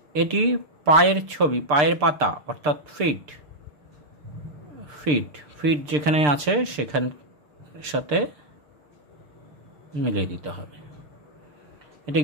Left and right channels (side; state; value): left; late; 6.7 ms